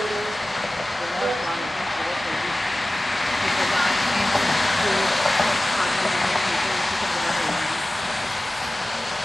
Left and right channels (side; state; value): both; normal; correlation 0.96